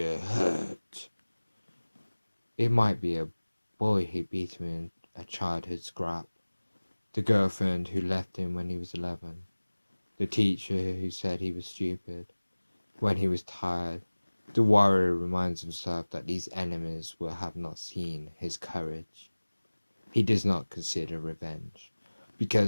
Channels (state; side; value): inverted; both; correlation -1.00